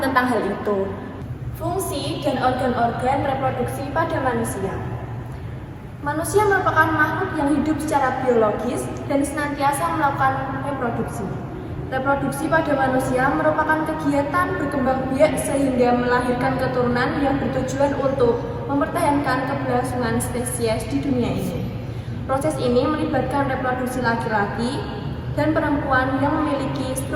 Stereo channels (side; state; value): both; identical; correlation 1.00